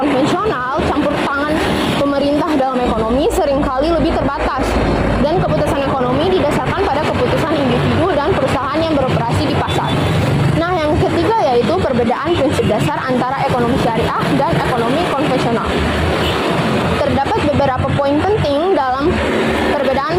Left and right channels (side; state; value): both; identical; correlation 1.00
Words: campur tangan pemerintah dalam ekonomi seringkali lebih terbatas, dan keputusan ekonomi didasarkan pada keputusan individu dan perusahaan yang beroperasi di pasar. Nah, yang ketiga yaitu perbedaan prinsip dasar antara ekonomi syariah dan ekonomi konvensional. Terdapat beberapa poin penting dalam perbedaan